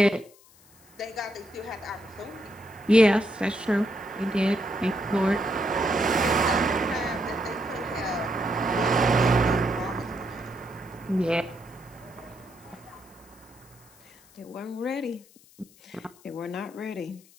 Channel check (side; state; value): left; noise; hiss, 26 dB below the sound